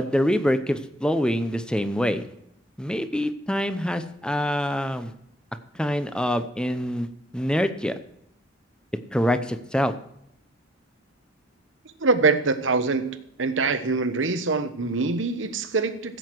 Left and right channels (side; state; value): both; normal; correlation 0.50